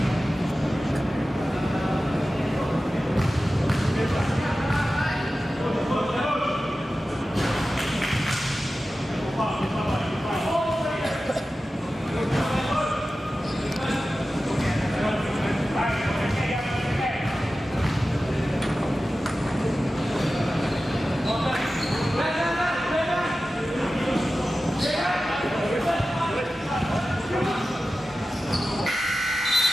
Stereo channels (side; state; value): both; normal; correlation 0.94